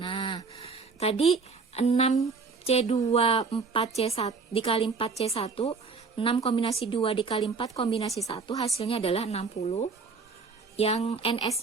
Nah, tadi 6C2 4C1 dikali 4C1, 6 kombinasi 2 dikali 4 kombinasi 1 hasilnya adalah 60. Yang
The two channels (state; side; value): quieter; left; 4.7 dB